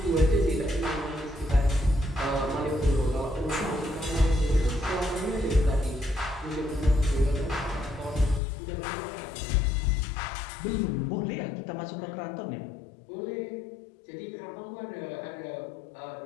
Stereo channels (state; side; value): drops out; right; at 8.4 s